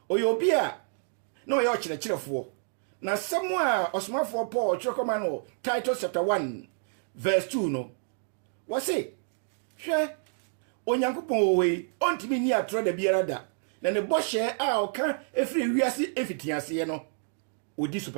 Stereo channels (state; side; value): silent; left; digital silence